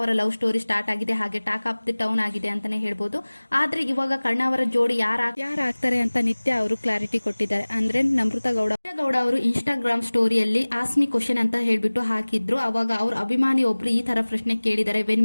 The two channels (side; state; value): both; inverted; correlation -1.00